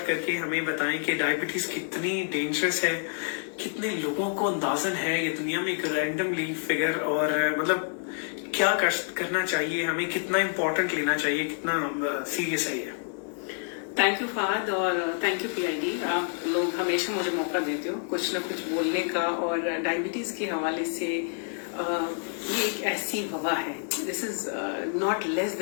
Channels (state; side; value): silent; right; 56 dB below the other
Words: करके हमें बताएं कि डायबिटीज कितनी डेंजरस है, कितने लोगों को अंदाजन है ये दुनिया में एक रैंडमली फिगर, और मतलब क्या करना चाहिए हमें, कितना इम्पोर्टेंट लेना चाहिए, कितना सीरियस है ये। थैंक यू फहद और थैंक यू पीआईडी। आप लोग हमेशा मुझे मौका देते हो कुछ ना कुछ बोलने का, और डायबिटीज के हवाले से ये एक ऐसी वबा है, this is not less